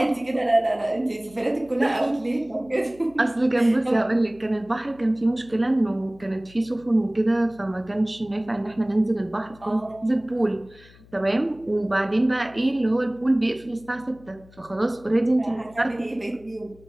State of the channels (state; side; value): noise; left; hum, 25 dB below the sound